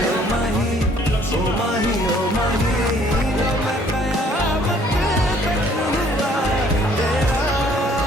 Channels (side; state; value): both; normal; correlation 0.60